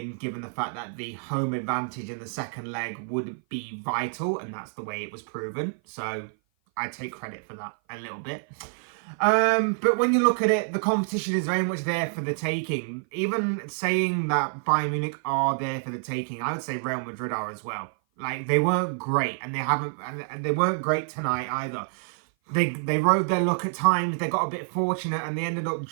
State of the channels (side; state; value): left; silent; 55 dB below the other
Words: given the fact that the home advantage in the second leg would be vital, and that's the way it was proven. So I take credit for that a little bit. But when you look at it, the competition is very much there for the taking. Even saying that Bayern Munich are there for the taking, I would say Real Madrid are as well. Like, they weren't great, and they weren't great tonight either. They rode their luck at times. They got a bit fortunate, and they ended up